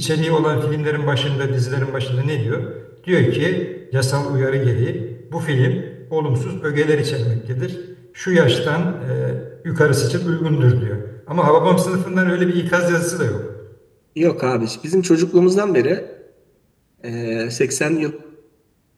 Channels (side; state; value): both; identical; correlation 1.00